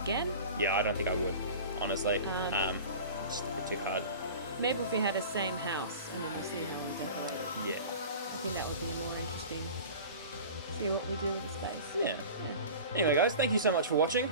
again. Yeah, I don't think I would, honestly. It's just a bit too hard. Maybe if we had a same house and then we'll see how we decorate it. Yeah. I think that would be more interesting. See what we do with the space. Yeah. Anyway, guys, thank you so much for watching.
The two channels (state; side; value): inverted; both; correlation -0.37